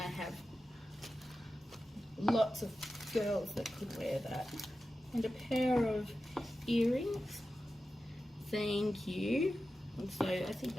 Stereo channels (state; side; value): normal; both; correlation 0.93